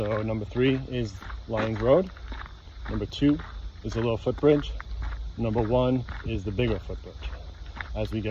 number 3 is Lions Road. Number 2 is a little footbridge. Number 1 is the bigger footbridge as we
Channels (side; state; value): both; identical; correlation 1.00